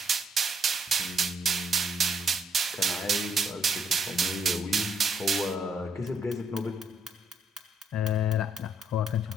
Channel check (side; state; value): both; normal; correlation 0.70